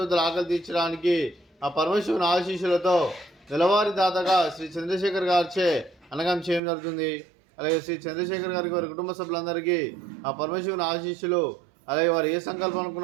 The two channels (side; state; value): left; drops out; at 6.6 s